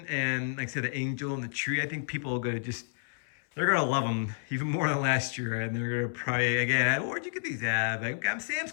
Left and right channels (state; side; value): silent; right; 58 dB below the other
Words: and, like I said, the angel and the tree. I think people are going to they're going to love them even more than last year. And they're going to probably, again, where'd you get these at? I got them Sam's